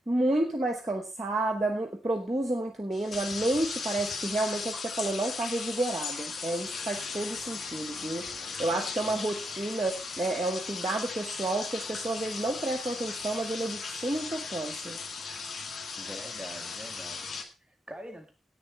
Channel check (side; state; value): both; normal; correlation 0.79